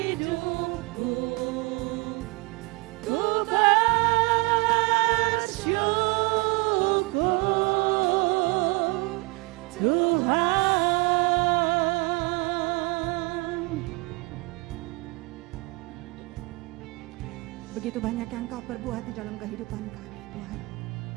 Ku bersyukur Tuhan. Begitu banyak yang Kau perbuat di dalam kehidupan kami, Tuhan.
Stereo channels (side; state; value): left; quieter; 26.4 dB